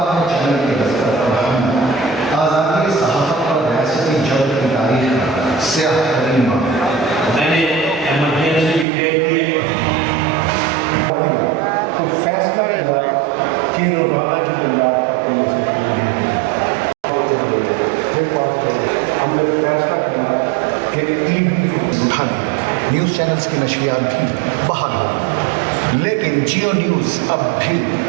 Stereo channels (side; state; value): left; drops out; at 8.8 s